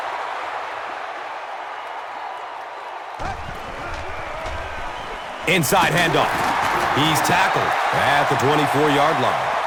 Inside handoff. He's tackled at the 24-yard line.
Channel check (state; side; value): identical; both; correlation 1.00